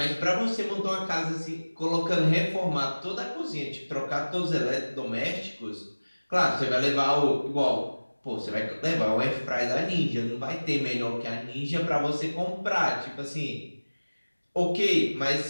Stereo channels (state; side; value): inverted; both; correlation -1.00